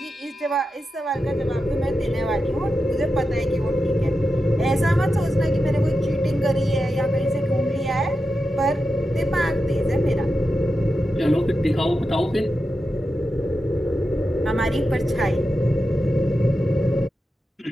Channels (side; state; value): both; normal; correlation 0.90